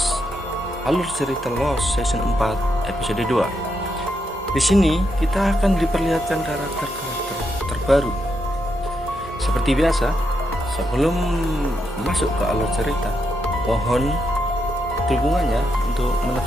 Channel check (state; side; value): normal; both; correlation 0.81